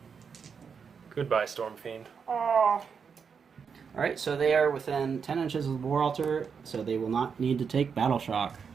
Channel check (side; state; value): left; quieter; 6.2 dB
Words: Goodbye, Storm Fiend. Alright, so they are within 10 inches of the War Altar, so they will not need to take Battle Shock.